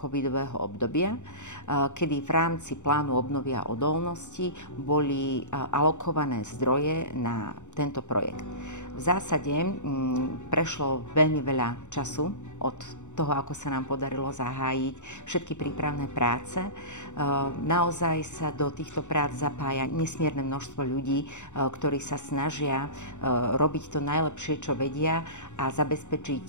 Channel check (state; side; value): late; right; 0.84 ms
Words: obdobia, kedy v rámci plánu obnovy a odolnosti boli alokované zdroje na tento projekt. V zásade prešlo veľmi veľa času od toho, ako sa nám podarilo zahájiť všetky prípravné práce. Naozaj sa do týchto prác zapája nesmierne množstvo ľudí, ktorí sa snažia robiť to najlepšie, čo vedia a